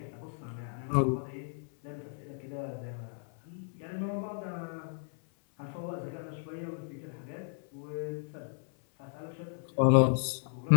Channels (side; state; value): right; silent; 55 dB below the other